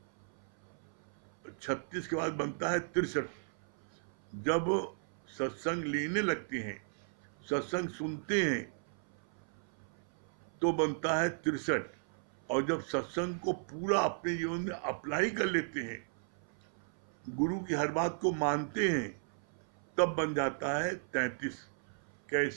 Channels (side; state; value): left; silent; 54 dB below the other